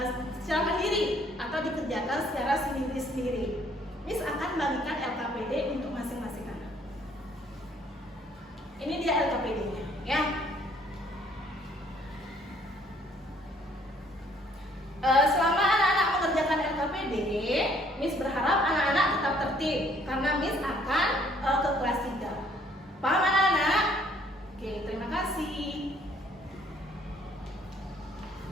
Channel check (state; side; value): normal; both; correlation 0.62